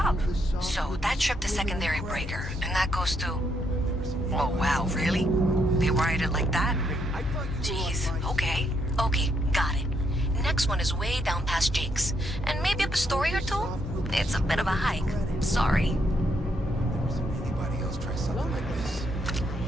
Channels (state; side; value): normal; both; correlation 0.75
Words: So, that tripped the secondary breaker, and that goes to... Oh, wow, really? They wired it like that? Jeez, okay. Okay, got it. Next one is way down past Jake's. And maybe up a story or two? It's a bit of a hike. Sorry. Anybody else try something like this?